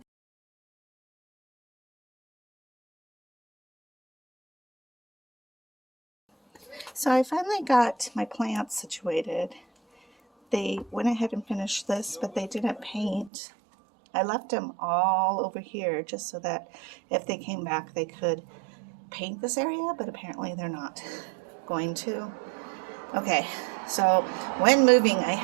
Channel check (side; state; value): left; drops out; at 13.3 s